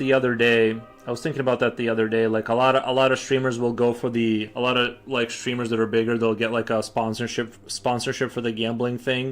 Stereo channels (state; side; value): identical; both; correlation 1.00